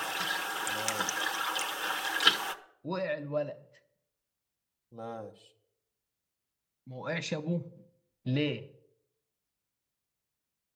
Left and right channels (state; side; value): identical; both; correlation 1.00